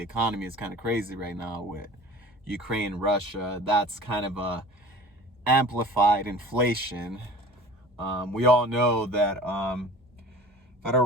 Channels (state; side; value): normal; both; correlation 0.42